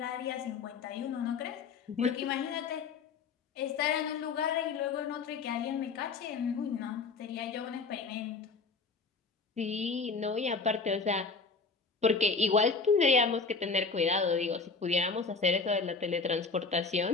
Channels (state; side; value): quieter; right; 4.6 dB